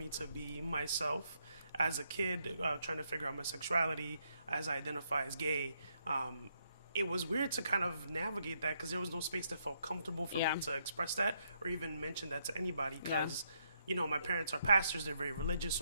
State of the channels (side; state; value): both; inverted; correlation -0.76